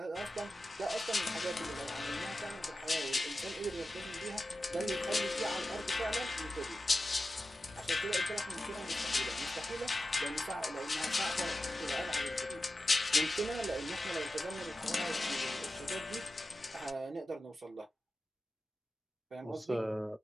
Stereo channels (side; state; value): both; normal; correlation 0.93